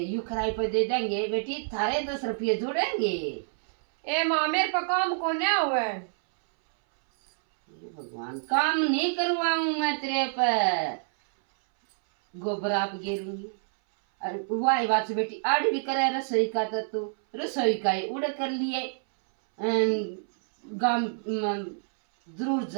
किराए पे दे देंगे बेटी थारे 10 रुपये जोड़ेंगे ए माँ मेरे पर काम को न हुए ये भगवान काम नहीं करवाऊं मैं तेरे पर गोबर आप गिरूंगी अरे वाई बात से बेटी आड़ भी करे रसोई का तो तू रसोई का ही उड़ कर लिए गांव जरूर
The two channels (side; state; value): left; silent; 60 dB below the other